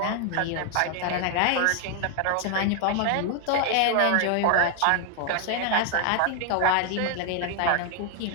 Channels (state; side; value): different; both; correlation 0.00